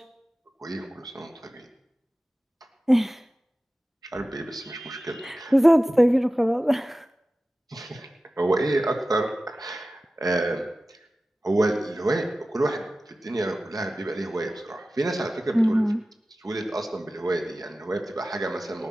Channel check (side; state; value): both; normal; correlation 0.96